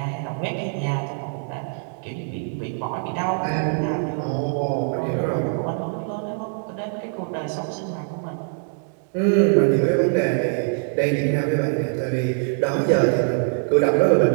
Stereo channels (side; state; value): left; silent; 63 dB below the other